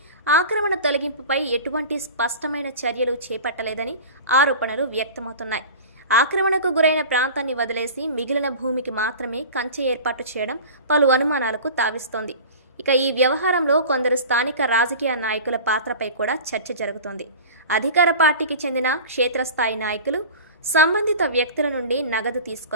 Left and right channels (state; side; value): inverted; both; correlation -0.36